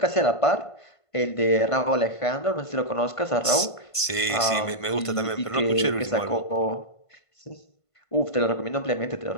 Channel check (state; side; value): late; right; 1.5 ms